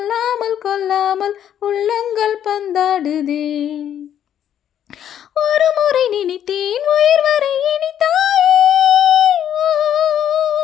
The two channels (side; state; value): right; quieter; 10.0 dB